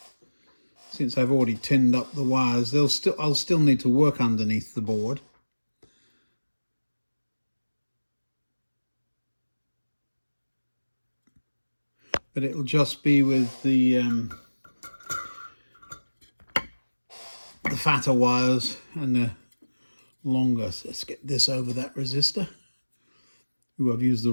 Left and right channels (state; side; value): inverted; both; correlation -1.00